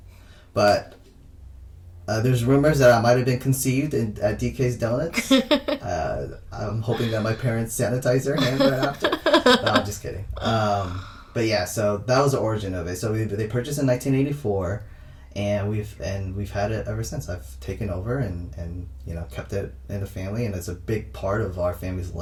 but there's rumors that I might have been conceived at DK's Donuts. I'm hoping that my parents sanitize their hands right after. No, I'm just kidding. But yeah, so that was the origin of it. So they purchased in 1984, and we've had it ever since. I've taken over and kept it in the family, and it's a big part of our family's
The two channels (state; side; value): identical; both; correlation 1.00